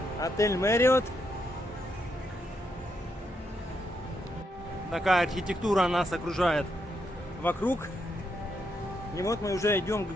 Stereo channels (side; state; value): both; normal; correlation 0.79